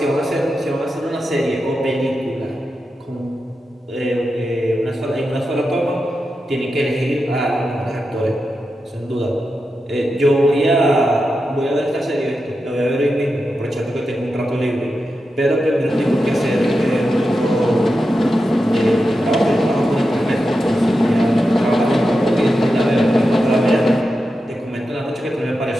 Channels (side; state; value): both; normal; correlation 0.89